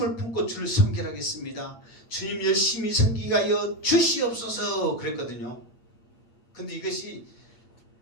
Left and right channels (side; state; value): right; late; 8.3 ms